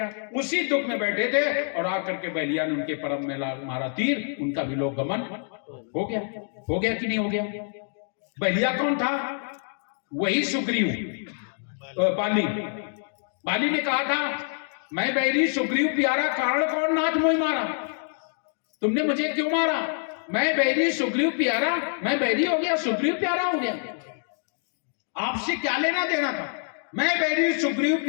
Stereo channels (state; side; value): silent; right; 61 dB below the other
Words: उसी दुख में बैठे थे और आकर के बलिया ने उनके परम में मारा तीर, उनका भी लोक गमन हो गया कि नहीं हो गया? बलिया कौन था? वही सुग्रीव, बाली ने कहा था, मैं बैरी सुग्रीव प्यारा, कारण कौन नाथ मोहि मारा। तुमने मुझे क्यों मारा? मैं बैरी सुग्रीव प्यारा, मैं बैरी हो गया, सुग्रीव प्यारा हो गया। आपसे क्या लेना देना था? मैं बैरी सुग्रीव